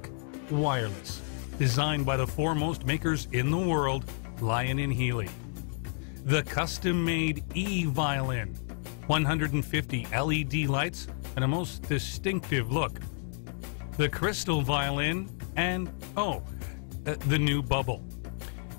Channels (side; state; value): right; silent; digital silence